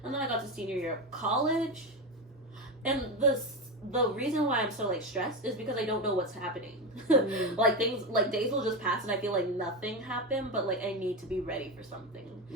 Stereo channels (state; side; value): normal; both; correlation 0.16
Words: And then I got to senior year of college, and the reason why I'm so like stressed is because I don't know what's happening. Like things like days will just pass and I feel like nothing happened, but like I need to be ready for something.